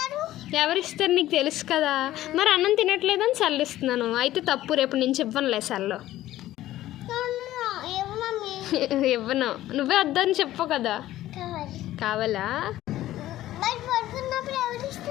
ఎవరిస్తారు నీకు తెలుసు కదా. మరి అన్నం తినట్లేదని చల్లిస్తున్నాను, అయితే తప్పు. రేపు నుంచి ఇవ్వనులే సెల్లు. ఇవ్వను. నువ్వే వద్దని చెప్పు కదా. కావాలా?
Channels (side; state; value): right; quieter; 14.5 dB